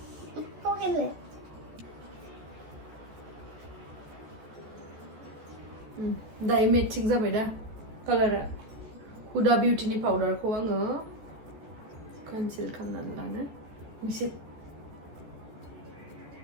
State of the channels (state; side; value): late; left; 14 ms